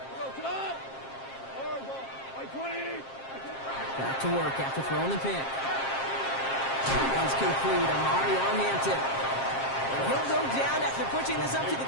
Back to work after throwing the pick. One's complete. Amari on Hampton. And he'll go down after pushing this up to the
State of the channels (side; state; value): right; late; 7.5 ms